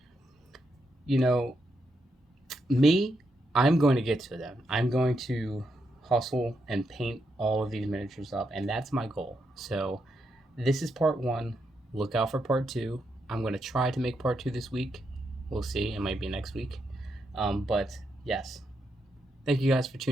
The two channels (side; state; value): both; normal; correlation 0.82